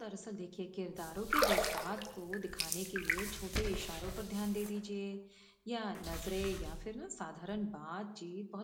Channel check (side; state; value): both; identical; correlation 1.00